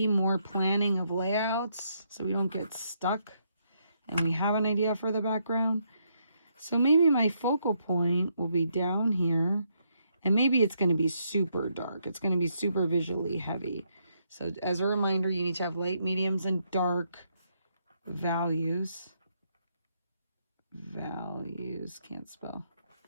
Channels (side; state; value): both; inverted; correlation -0.76